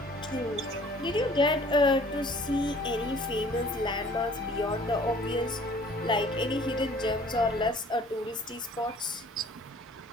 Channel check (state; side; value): normal; both; correlation 0.52